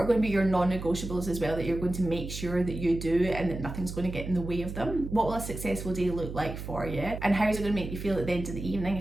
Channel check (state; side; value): noise; right; hum, 8 dB below the sound